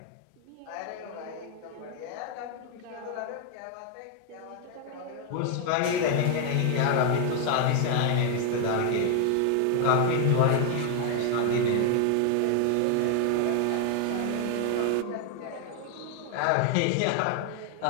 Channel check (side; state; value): both; different; correlation 0.00